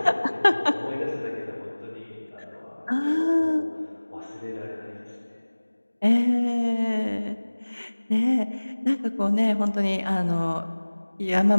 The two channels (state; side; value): inverted; both; correlation -1.00